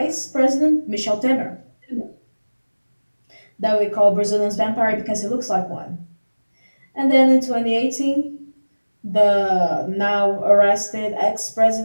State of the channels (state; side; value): inverted; both; correlation -1.00